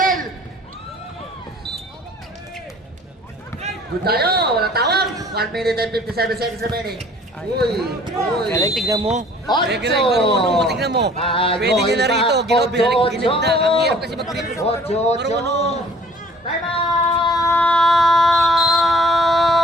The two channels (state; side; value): normal; both; correlation 0.53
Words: Good tayo, walang tawag. 1 minute and 57 seconds remaining. Uy. Galing, tignan mo. Ocho. Galing, marunong mo, tignan mo. Pwede nyo na rito. Ginib na. Ang hirap kasi mag-grip. Marunong. Time out!